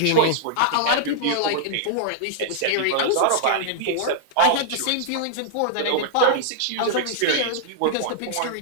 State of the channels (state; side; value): different; both; correlation -0.01